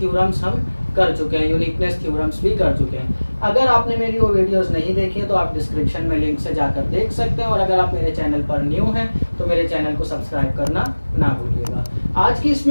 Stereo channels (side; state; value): both; inverted; correlation -1.00